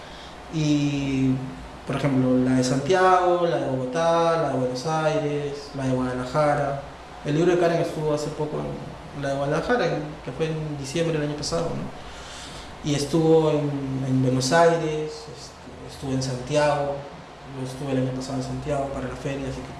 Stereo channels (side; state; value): both; identical; correlation 1.00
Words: y por ejemplo la de Santiago, la de Bogotá, la de Buenos Aires, la de Guadalajara. El libro de Karen estuvo hace poco en la de Guadalajara, que fue en diciembre del año pasado, ¿no? Y estuvo en Buenos Aires, estuvo en Santiago, yo estuve el año pasado en Santiago para la feria, así